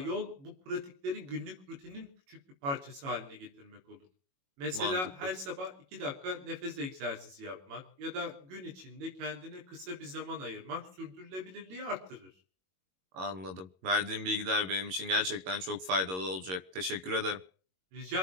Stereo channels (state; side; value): late; left; 22 ms